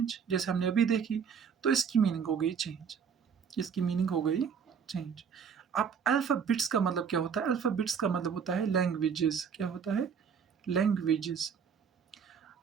जैसे हमने अभी देखी। तो इसकी मीनिंग हो गई चेंज, इसकी मीनिंग हो गई चेंज। अब अल्फ़ाबेट्स का मतलब क्या होता है? अल्फ़ाबेट्स का मतलब होता है लैंग्वेजेस। क्या होता है? लैंग्वेजेस।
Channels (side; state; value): left; quieter; 6.8 dB